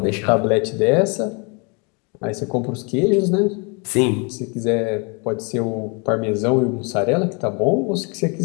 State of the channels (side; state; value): right; quieter; 32.9 dB